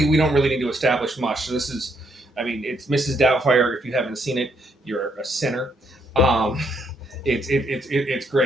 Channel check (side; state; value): both; normal; correlation 0.73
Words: we don't really need to establish much. So this is, it's Mrs. Doubtfire. If you haven't seen it, you're a sinner. It's